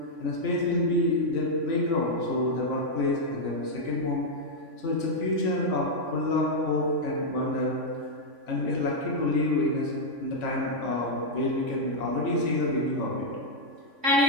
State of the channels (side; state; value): left; late; 3.5 ms